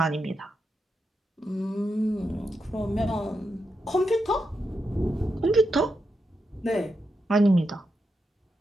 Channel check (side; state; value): both; normal; correlation 0.86